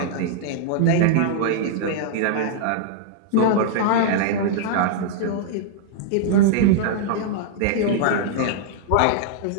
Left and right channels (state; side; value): different; both; correlation -0.01